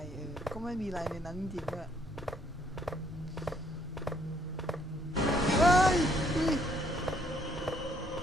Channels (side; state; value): both; normal; correlation 0.68